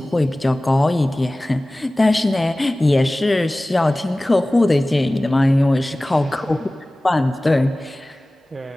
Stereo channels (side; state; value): both; normal; correlation 0.98